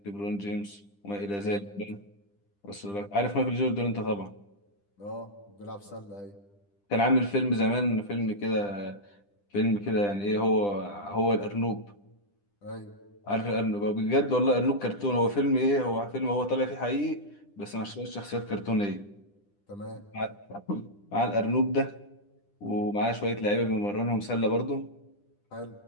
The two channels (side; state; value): right; late; 10 ms